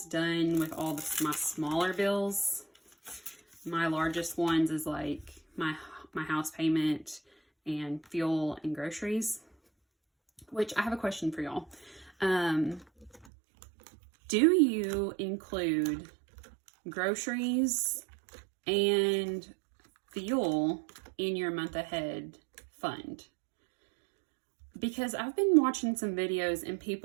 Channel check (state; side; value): drops out; left; at 13.2 s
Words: done with all my smaller bills. My largest ones is like my house payment and fuel and groceries, which I have a question for y'all. Do you include groceries and fuel in your month ahead fund? Because I've been watching some videos and